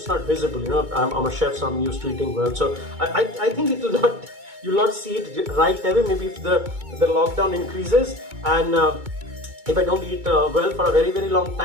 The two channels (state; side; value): late; left; 2.2 ms